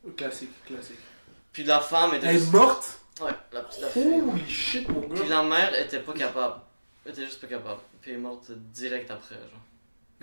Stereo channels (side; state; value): both; inverted; correlation -1.00